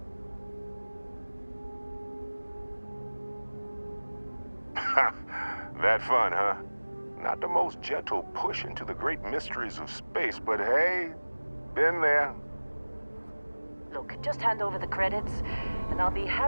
That fun, huh? Not the most gentle push into the great mysteries of space, but hey, been there. Look, just hand over the credits, and I'll be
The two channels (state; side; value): inverted; both; correlation -1.00